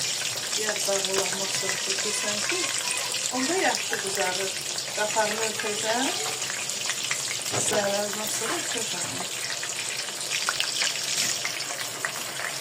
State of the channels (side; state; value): both; identical; correlation 1.00